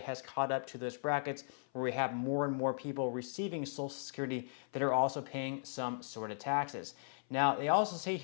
caught up to those brackets where we have more and more people receiving Social Security that are also paying some sort of taxes. Now, they also say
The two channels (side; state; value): right; silent; 53 dB below the other